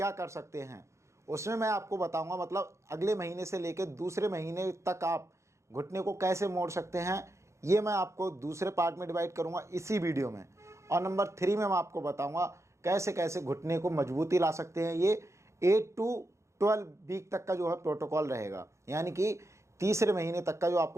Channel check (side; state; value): left; late; 0.14 ms